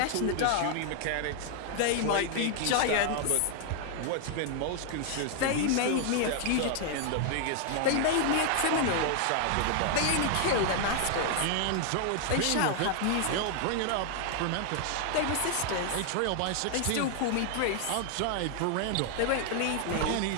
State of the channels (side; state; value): both; different; correlation 0.00